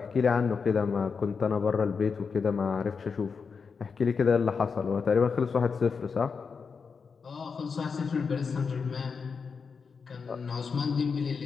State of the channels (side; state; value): right; quieter; 5.5 dB